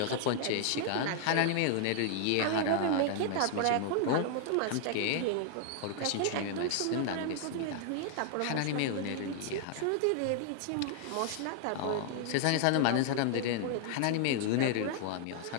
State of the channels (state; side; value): different; both; correlation 0.00